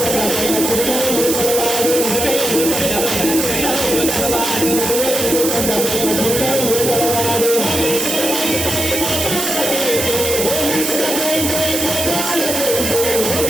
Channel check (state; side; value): noise; right; hiss, 2 dB below the sound